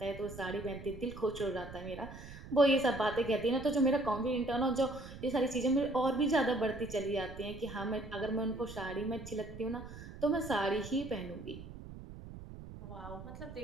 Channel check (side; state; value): right; noise; rumble, 13 dB below the sound